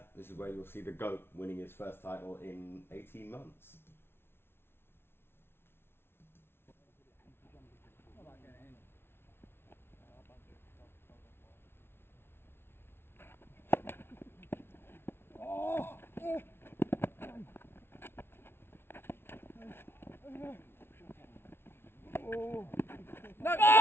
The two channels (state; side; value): late; right; 0.11 ms